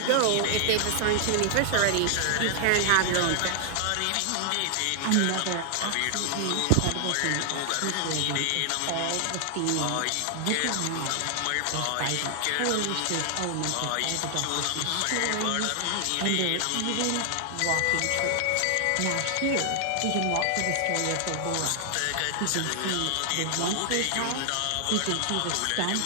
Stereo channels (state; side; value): different; both; correlation 0.00